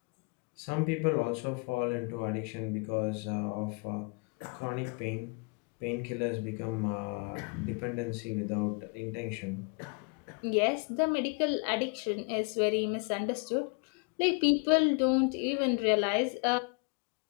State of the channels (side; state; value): right; quieter; 33.3 dB